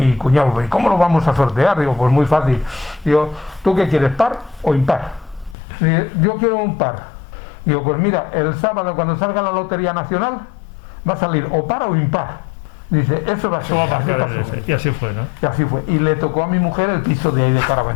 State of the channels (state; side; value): drops out; right; at 5.6 s